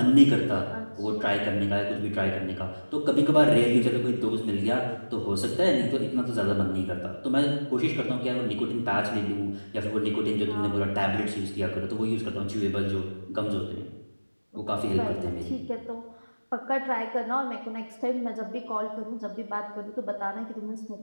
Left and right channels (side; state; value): both; inverted; correlation -1.00